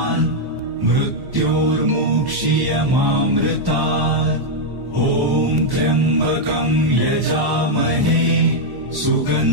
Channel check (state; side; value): late; left; 1.1 ms